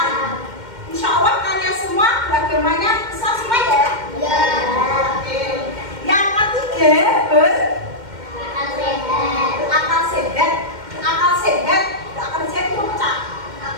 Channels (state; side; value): late; left; 2.1 ms